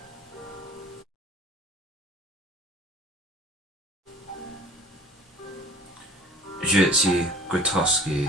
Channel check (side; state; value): both; normal; correlation 0.47